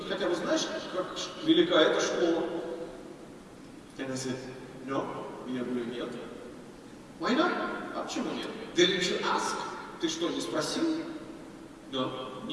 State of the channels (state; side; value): identical; both; correlation 1.00